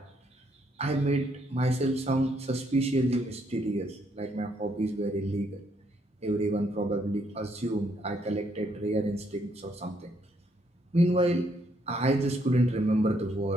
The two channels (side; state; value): both; normal; correlation 0.72